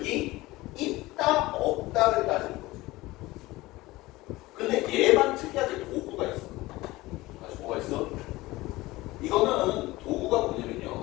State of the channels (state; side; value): quieter; right; 19.4 dB